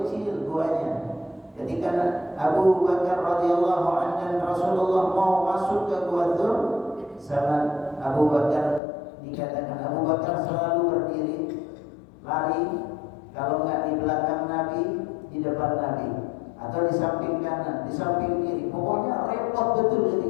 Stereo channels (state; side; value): drops out; right; at 8.8 s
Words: kecil guanya. Ketika Abu Bakar radhiyallahu anhu dan Rasulullah mau masuk ke Gua Dzur, sama Abu Bakar dikatakan Abu Bakar selalu berdiri, lari, kalau enggak di belakang Nabi, di depan Nabi, atau di samping kanan, di samping kiri. Pokoknya repot betul